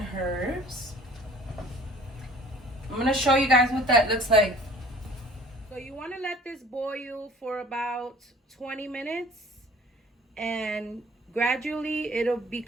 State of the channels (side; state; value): both; normal; correlation 0.49